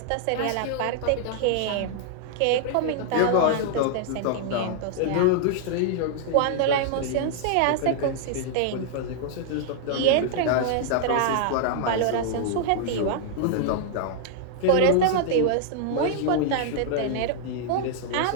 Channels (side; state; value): both; different; correlation -0.01